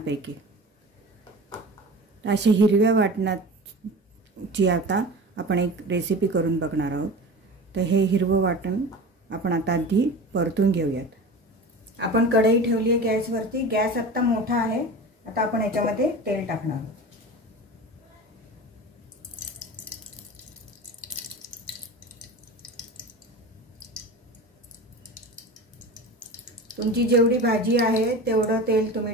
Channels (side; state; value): both; normal; correlation 0.33